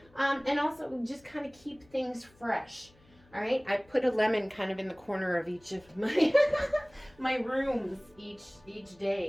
and also just kind of keep things fresh. All right, I put a lemon kind of in the corner of each of my my rooms each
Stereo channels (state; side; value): noise; left; hum, 29 dB below the sound